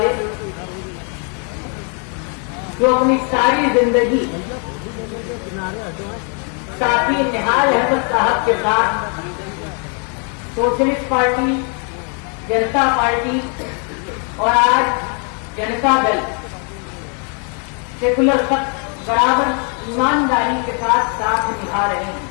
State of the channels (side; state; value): right; quieter; 40.0 dB